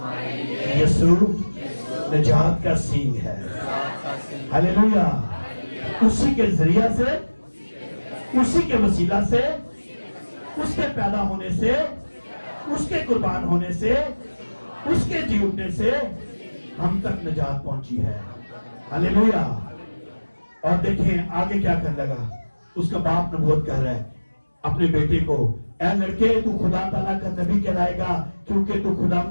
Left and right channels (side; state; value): both; inverted; correlation -1.00